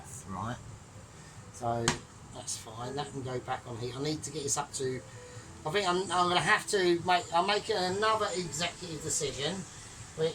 right? So that's fine. That can go back on heat. I need to get this up to. I think I'm going to have to make. I'm making another executive decision,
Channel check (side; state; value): both; identical; correlation 1.00